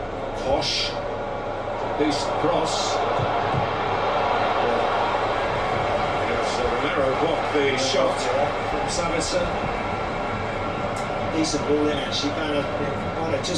Posh, decent cross. Romero blocked the shot from Savitzer. Decent ball in actually. Banner might have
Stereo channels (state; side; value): identical; both; correlation 1.00